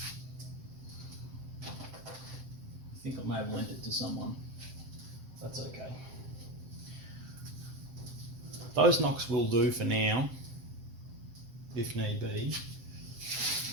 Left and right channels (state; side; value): late; left; 7.7 ms